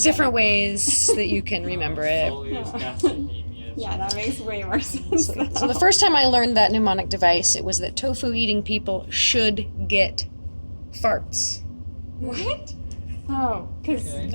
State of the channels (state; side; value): inverted; both; correlation -1.00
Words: different ways that you can remember it. Soleus gastrocnemius. Yeah, that makes way more sense. So the first time I learned that mnemonic device, it was that tofu eating people should get farts. What? Oh, because